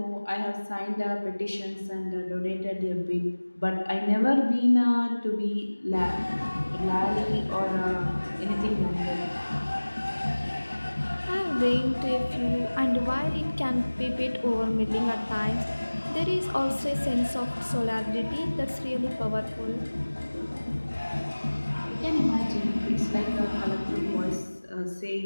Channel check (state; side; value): inverted; both; correlation -1.00